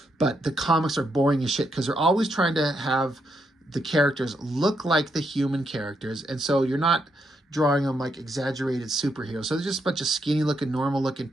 But the comics are boring as shit because they're always trying to have the characters look like the human characters. And so you're not drawing them like exaggerated superheroes. So they're just a bunch of skinny looking, normal looking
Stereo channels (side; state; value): both; normal; correlation 0.79